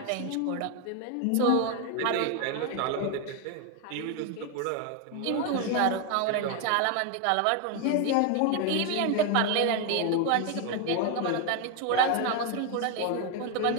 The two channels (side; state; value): both; different; correlation 0.01